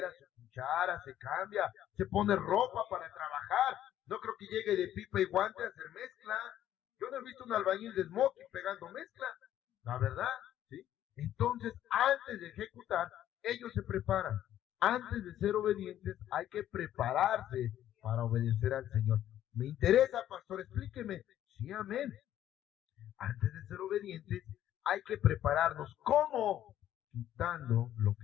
su cuchara, se cambia, se pone ropa para trabajar. No creo que llegue de pipa y guante a hacer mezcla. Yo no he visto un albañil de smoking pegando mezcla, la verdad, ¿sí? Entonces, antes de ejecutar, ellos se preparan. Antes de ser obedientes, hay que prepararse para obedecer al Señor. Me interesa, pastor, explíqueme. Sí, amén. Antes de ser obedientes, hay que prepararnos. ¿Cómo? Quitando lo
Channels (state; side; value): quieter; right; 11.8 dB